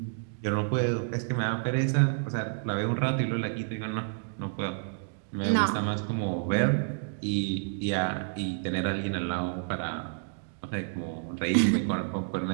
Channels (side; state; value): left; silent; digital silence